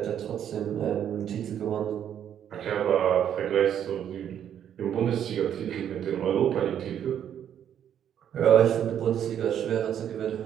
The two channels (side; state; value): left; quieter; 9.5 dB